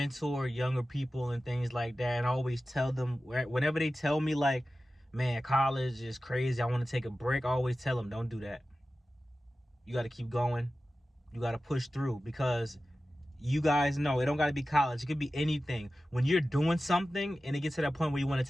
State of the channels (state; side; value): normal; both; correlation 0.95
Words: younger people and things like that, and I always tell them, whenever they tell me like, man, college is crazy, I want to take a break, I always tell them, don't do that. You got to keep going. You got to push through, because you guys know it don't got to be college. It could be anything. When you're doing something and it gets to that point where you want to